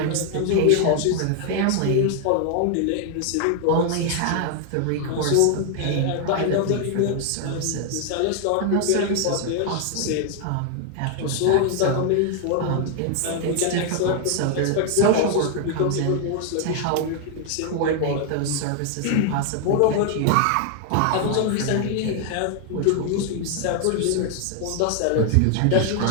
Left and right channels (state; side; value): different; both; correlation 0.00